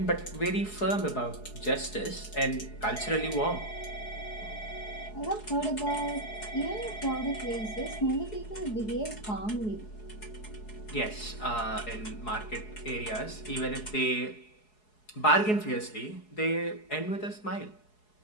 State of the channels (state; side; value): late; right; 4.7 ms